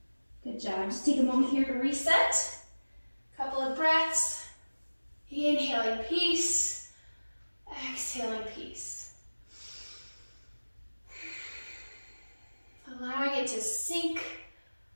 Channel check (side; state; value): both; inverted; correlation -1.00